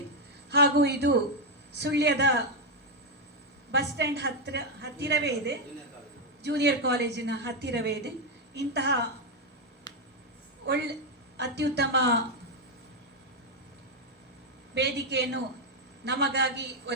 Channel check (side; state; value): both; normal; correlation 0.04